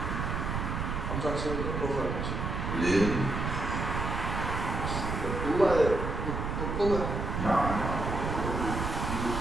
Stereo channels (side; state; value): right; noise; rumble, 2 dB below the sound